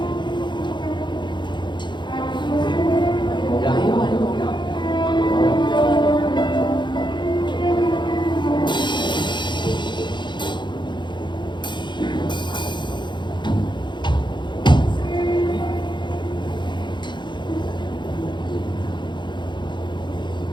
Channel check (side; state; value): right; late; 0.22 ms